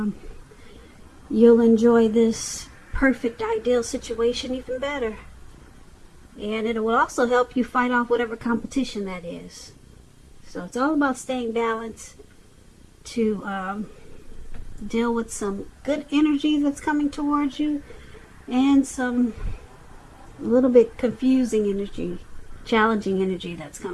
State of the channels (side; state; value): both; identical; correlation 1.00